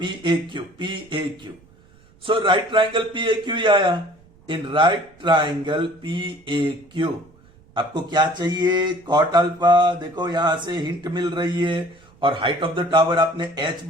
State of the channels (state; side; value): noise; right; rumble, 29 dB below the sound